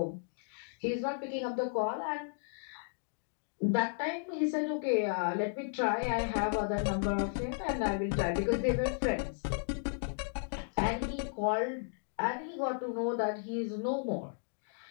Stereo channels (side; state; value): right; silent; digital silence